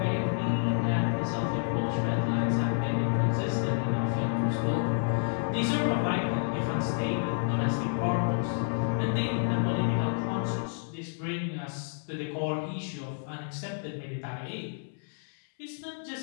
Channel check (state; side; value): silent; right; 58 dB below the other